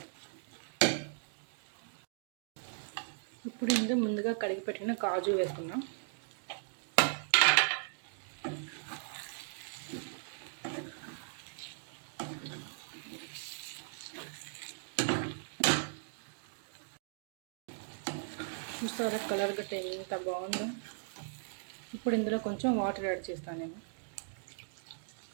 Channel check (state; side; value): silent; left; digital silence